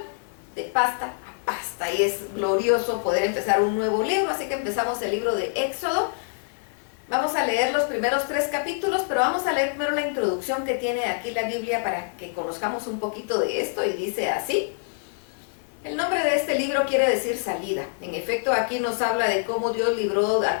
de pasta a pasta. Y es glorioso poder empezar un nuevo libro, así que empezamos el libro de Éxodo. Vamos a leer los primeros 3 capítulos, pero vamos a leer primero la introducción que tiene aquí la Biblia para que conozcamos un poquito de esto, y dice así. El nombre de este libro quiere decir salida. En efecto, aquí nos habla de cómo Dios libró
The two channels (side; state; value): right; silent; digital silence